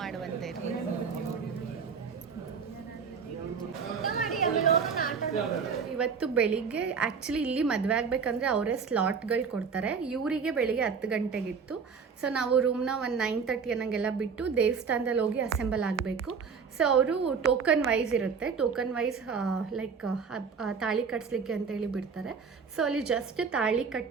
ಇರಲಿ. ಇವತ್ತು ಬೆಳಿಗ್ಗೆ ಆ್ಯಕ್ಚುಲಿ ಇಲ್ಲಿ ಮದುವೆ ಆಗಬೇಕಂದ್ರೆ ಅವರೇ ಸ್ಲಾಟ್ಗಳು ಕೊಡ್ತಾರೆ. ಇವರಿಗೆ ಬೆಳಿಗ್ಗೆ 10 ಗಂಟೆಗಿತ್ತು. ಸೊ ನಾವು ರೂಮ್ನ ಒಂದು 9:30 ಅನ್ನಂಗೆಲ್ಲ ಬಿಟ್ಟು ದೇವಸ್ಥಾನದಲ್ಲಿ ಹೋಗಿ ಅಸೆಂಬಲ್ ಆಗಬೇಕು. ಸೊ ಅವರು ಟೋಕನ್ ವೈಸ್ ಇರುತ್ತೆ, ಟೋಕನ್ ವೈಸ್ ಲೈಕ್ ತಾಳಿ ಕಟ್ಸ್ಲಿಕ್ಕೆ ಅಂತೇಳಿ ಬಿಡ್ತಾರೆ. ಸೊ ಅಲ್ಲಿ ಜಸ್ಟ್ ತಾಳಿ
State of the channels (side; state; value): left; quieter; 5.9 dB